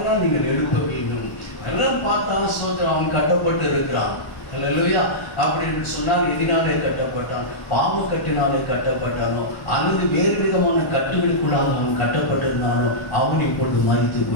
நீங்கள் எழுப்ப வேண்டும். எல்லாம் பார்த்தா ஸ்தோத்திரம் அவன் கட்டப்பட்டு இருக்கிறான். அல்லேலூயா. அப்படின்னு சொன்னால் எதினாலே கட்டப்பட்டான்? பாவ கட்டினாலே கட்டப்பட்டானோ அல்லது வேறு விதமான கட்டுகளுக்குள்ளாக அவன் கட்டப்பட்டிருந்தானோ அவன் இப்பொழுது மரித்து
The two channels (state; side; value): late; right; 1.1 ms